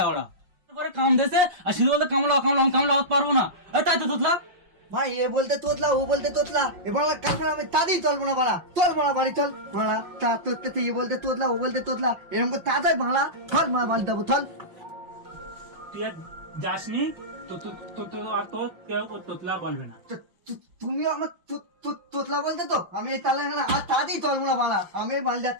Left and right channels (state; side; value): late; left; 5.6 ms